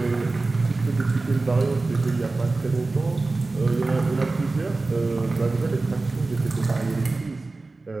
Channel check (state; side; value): quieter; left; 3.4 dB